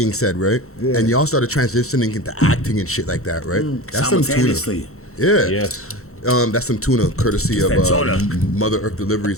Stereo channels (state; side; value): late; right; 0.63 ms